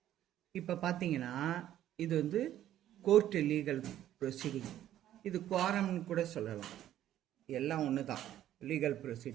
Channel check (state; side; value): quieter; left; 12.2 dB